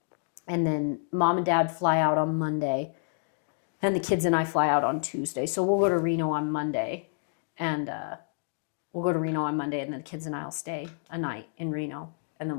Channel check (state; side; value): silent; right; digital silence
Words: And then Mom and Dad fly out on Monday, and the kids and I fly out on Tuesday. So we'll go to Reno on Monday, and then the kids and I will stay a night in Reno, and